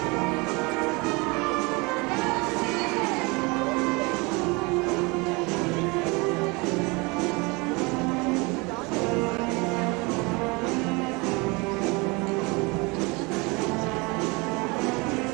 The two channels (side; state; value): left; quieter; 27.0 dB